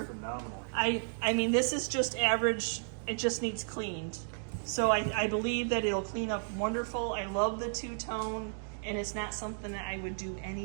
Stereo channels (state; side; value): silent; left; digital silence